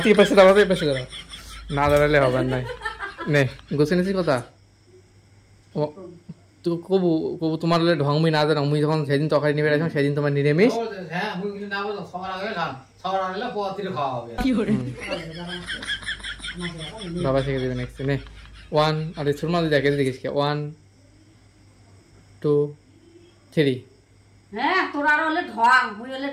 এই পাশে দাঁড়াও এই পাশে দাঁড়াও না দাঁড়ালে হবে না নে গোছে নিছি কথা ও তো কবু তোমার ঢংমি না জানো মুই যখন সেদিন তরকারি নিবে আসলাম সেদিন তোমার নিরামিষ হ্যাঁ মুই না বলো সবার আগে খান সবার আগে পোয়াতির খাওয়া হবে বাবা শিখে দেবে নেক্সট নে 1 আরে সুরমা দেখে দেখিস কে 1 2 3 হ্যাঁ তোরা হলে ঢং মুই হলে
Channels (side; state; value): both; identical; correlation 1.00